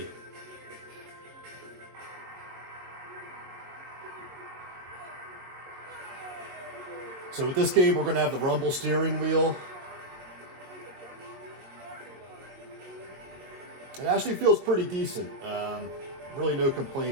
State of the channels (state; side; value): late; left; 22 ms